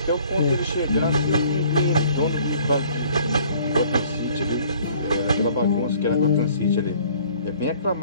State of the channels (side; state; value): both; inverted; correlation -0.56